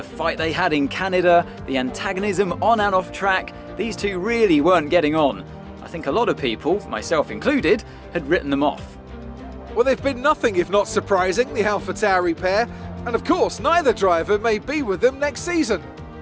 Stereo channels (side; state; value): both; identical; correlation 1.00